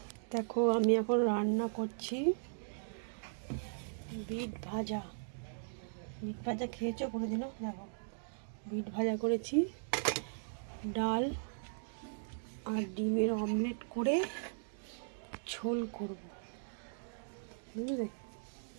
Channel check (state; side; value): silent; left; digital silence